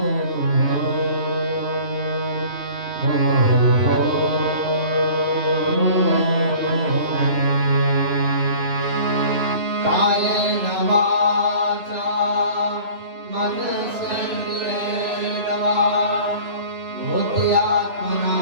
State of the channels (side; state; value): left; late; 3.0 ms